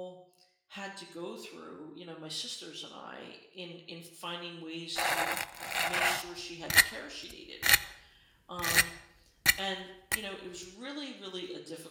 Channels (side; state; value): both; identical; correlation 1.00